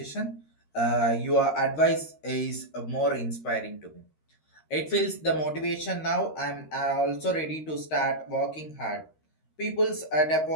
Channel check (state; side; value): late; right; 13 ms